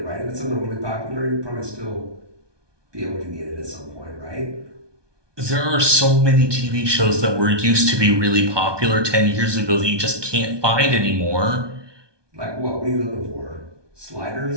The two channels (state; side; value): late; left; 1.2 ms